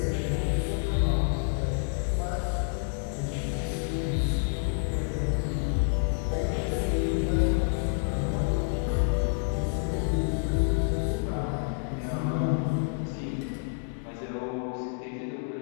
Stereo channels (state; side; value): silent; right; 59 dB below the other